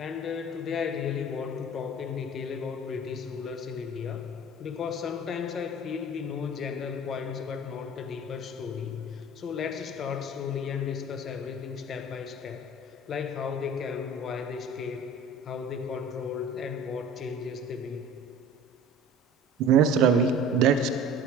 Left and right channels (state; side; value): normal; both; correlation 0.42